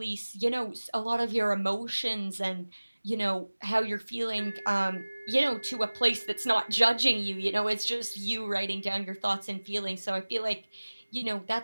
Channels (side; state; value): both; inverted; correlation -1.00